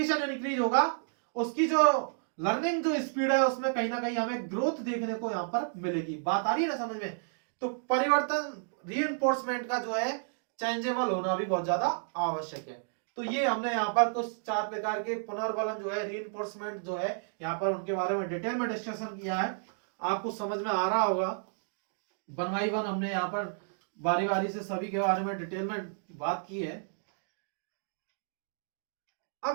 इंक्रीज होगा, उसकी जो लर्निंग जो स्पीड है उसमें कहीं ना कहीं हमें ग्रोथ देखने को यहां पर मिलेगी। बात आ रही है ना समझ में? तो परिवर्तन, रीइंफोर्समेंट का जो है चेंजेबल होना भी बहुत ज्यादा आवश्यक है। तो ये हमने यहाँ पर कुछ 4 प्रकार के पुनर्बलन जो है, रीइंफोर्समेंट जो है, यहाँ पर उनके बारे में डिटेल में डिस्कशन किया है। आपको समझ में आ रहा होगा, 1 by 1 हमने यहाँ पर बारी बारी से सभी के बारे में डिटेल में बात की है।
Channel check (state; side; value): silent; left; digital silence